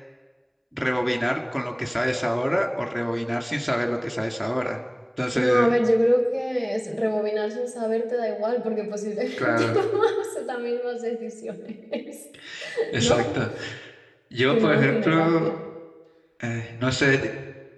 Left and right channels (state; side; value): identical; both; correlation 1.00